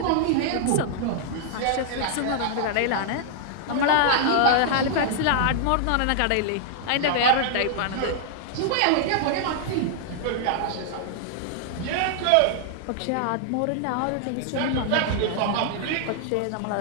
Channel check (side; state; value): both; different; correlation -0.01